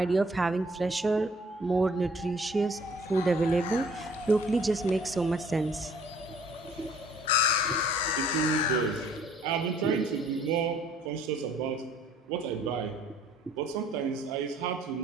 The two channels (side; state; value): both; normal; correlation 0.58